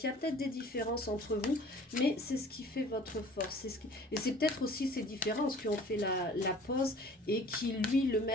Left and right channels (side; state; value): both; normal; correlation 0.48